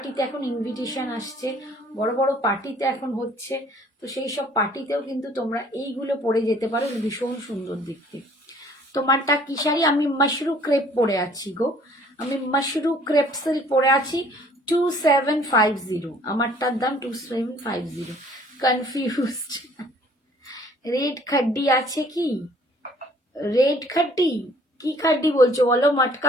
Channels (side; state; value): both; normal; correlation 0.56